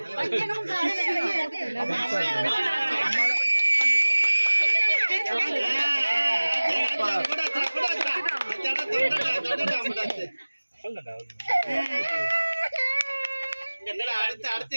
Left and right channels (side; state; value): both; inverted; correlation -1.00